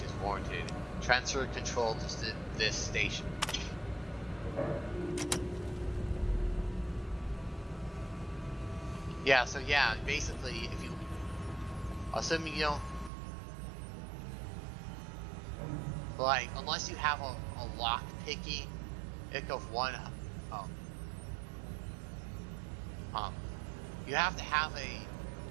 is warranted. Transfer control to this station. Yeah, so yeah, basically, if you, assuming you don't, like, unless you have a lock picking ick of one, you have to have a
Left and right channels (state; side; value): drops out; left; at 13.1 s